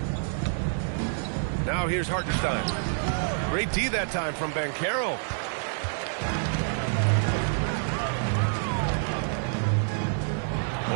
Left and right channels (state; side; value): silent; left; 55 dB below the other